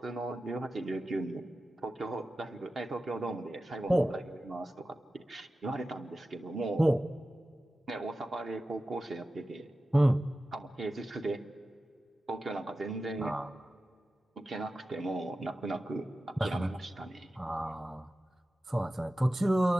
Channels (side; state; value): both; normal; correlation 0.94